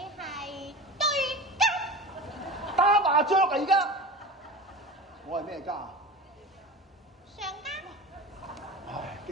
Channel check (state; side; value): normal; both; correlation 0.32